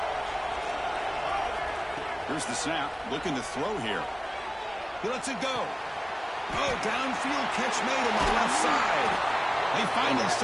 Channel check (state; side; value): identical; both; correlation 1.00